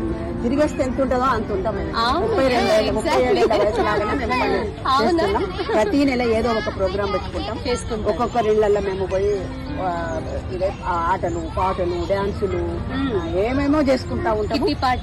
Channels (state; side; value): identical; both; correlation 1.00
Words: తిరిగేస్తే ఎంత ఉంటుందో అంత ఉంటాము. 37 వయసు లాగానే ప్రతి నెల ఏదో ఒక ప్రోగ్రాం పెట్టుకుంటాం. ఒక్కొక్కరి ఇళ్లలో మేము పోయి ఆటలు పాటలు డాన్సులు ఏమేమో చేసుకుంటా ఉంటాము.